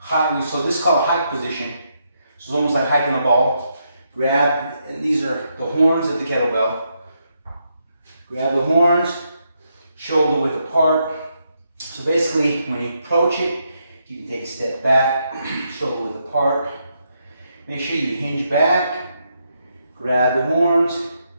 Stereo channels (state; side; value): inverted; both; correlation -0.79